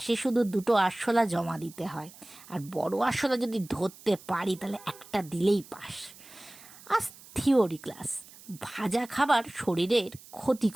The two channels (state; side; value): noise; right; hiss, 20 dB below the sound